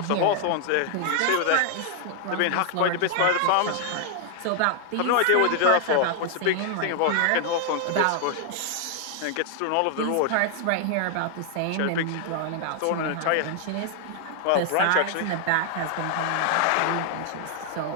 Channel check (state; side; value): different; both; correlation 0.00